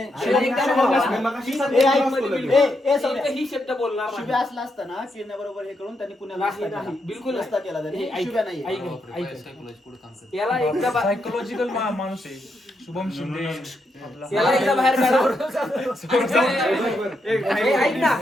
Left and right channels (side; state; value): both; normal; correlation 0.81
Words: एकदा बोललाच नाही. ही शब्द बोलणार नाही. शुभ्या असला असताना किरण्याबरोबर हे करून त्यांनी पुण्याला नाही, नसता नाही, केला. बिलकुल नसता केला त्यांनी ऐक, शुभ्या नाही ऐक, ऐक. याला एकदा सायकोलॉजिकल माणूस आहे शुभम शिंदे याला एकदा बाहेर काढा हे ऐक ना